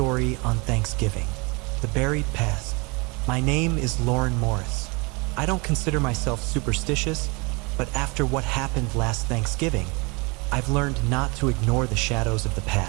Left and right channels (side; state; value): left; quieter; 28.9 dB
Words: on Thanksgiving. The Buried Past. My name is Lauren Morris. I don't consider myself superstitious, but after what happened last Thanksgiving, I've learned not to ignore the shadows of the